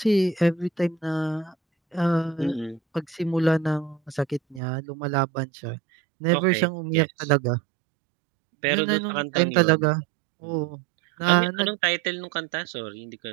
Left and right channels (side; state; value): left; drops out; at 4.6 s